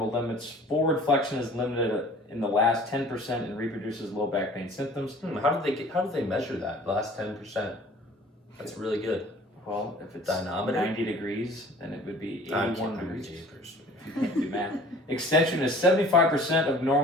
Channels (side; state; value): both; normal; correlation 0.48